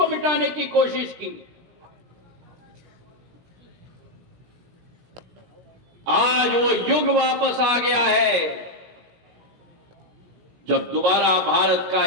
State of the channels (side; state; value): left; late; 16 ms